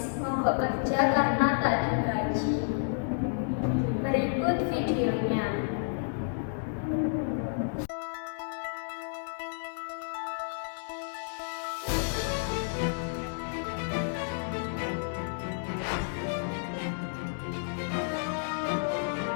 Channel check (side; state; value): right; silent; digital silence